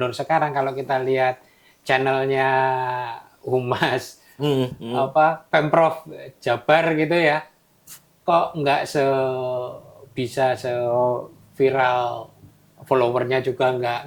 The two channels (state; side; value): identical; both; correlation 1.00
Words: sekarang kalau kita lihat channelnya Humas Pemprov Jabar gitu ya, kok nggak bisa viral, followernya juga nggak